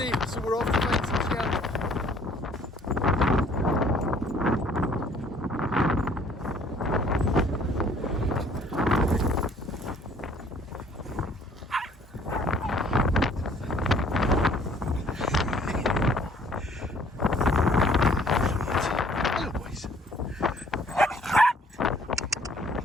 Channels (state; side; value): normal; both; correlation 0.58